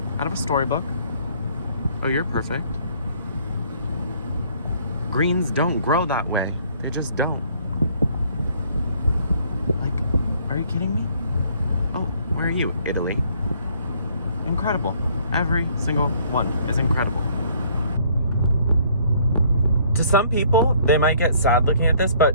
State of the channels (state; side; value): inverted; both; correlation -0.61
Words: out of a storybook. Oh, you're perfect. Greens don't grow that way. They just don't. Like, are you kidding me? Oh, where are you? Italy. Incredible. Every single one is incredible. To some people, they might get sad looking at this,